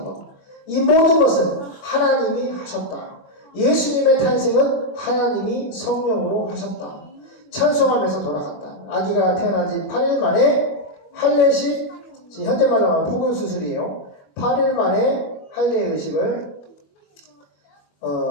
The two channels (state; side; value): late; right; 25 ms